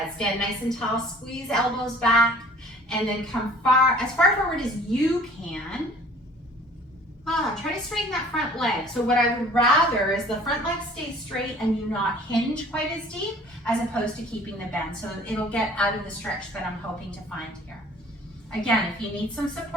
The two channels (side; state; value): both; normal; correlation 0.51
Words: Stand nice and tall. Squeeze elbows back, and then come as far forward as you can. Try to straighten that front leg. So what I would rather is the front leg stay straight and you not hinge quite as deep, as opposed to keeping the bend. So it'll get out of the stretch that I'm hoping to find here. Again, if you need some